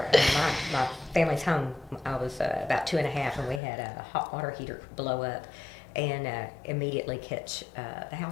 in my family's home. I was about 2.5, and we had a hot water heater blow up and immediately catch the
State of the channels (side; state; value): right; drops out; at 3.6 s